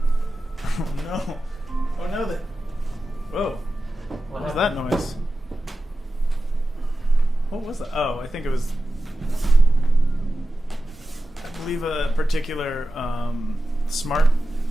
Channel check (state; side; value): normal; both; correlation 0.93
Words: Oh no. Oh no. Whoa. What was that noise? What was that? Oh, I think it was. I believe a particular smart